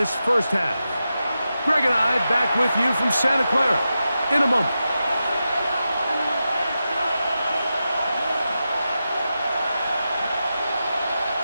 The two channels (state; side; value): inverted; both; correlation -0.90